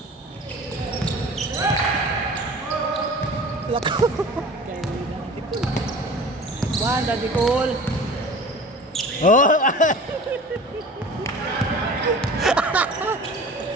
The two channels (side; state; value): both; normal; correlation 0.40